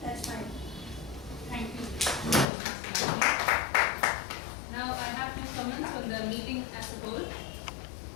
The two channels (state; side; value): drops out; right; at 2.5 s